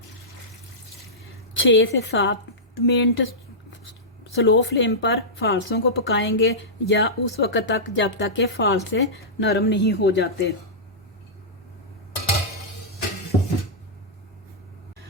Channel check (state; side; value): normal; both; correlation -0.14